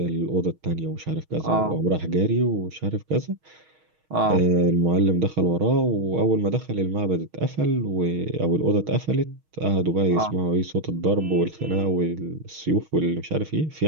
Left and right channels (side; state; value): left; late; 6.4 ms